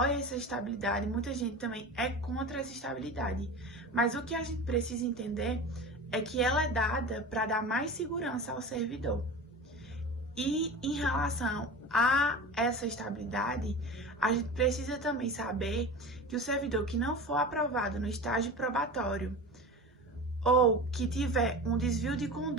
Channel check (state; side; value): normal; both; correlation 0.32